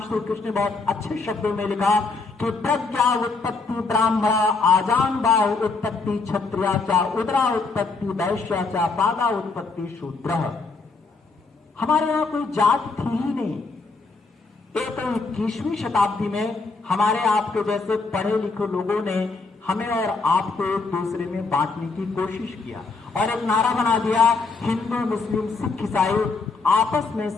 कृष्ण ने बहुत अच्छे शब्दों में लिखा कि प्रज्ञा उत्पत्ति ब्राह्मणा, आजान बाहु उत्पत्ति क्षत्रिया चा, उदरा उत्पत्ति वैश्या चा, पादा उत्पत्ति शूद्र। हमारे यहाँ कोई जात थी ही नहीं। एक 21वीं शताब्दी में हमारे आपके जैसे पढ़े लिखे लोगों ने हमें और आपको एक दूसरे में बांटने की कोशिश किया और एक नारा बना दिया हिंदू मुस्लिम सिख ईसाई आपस में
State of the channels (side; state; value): right; quieter; 4.1 dB